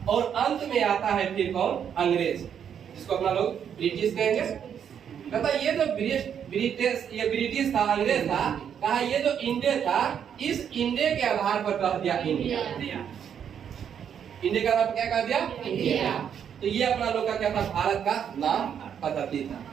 और अंत में आता है फिर कौन, अंग्रेज, जिसको अपना लोग ब्रिटिश कहेंगे। कहता ये जो ब्रिटिश था, अंग्रेज था, कहा ये जो इंडिया था इस इंडिया के आधार पर कह दिया इंडिया। इंडिया का नाम क्या कह दिया, इंडिया। तो ये अपना लोग का क्या था, भारत का नाम। पद्धति था,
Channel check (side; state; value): left; quieter; 8.3 dB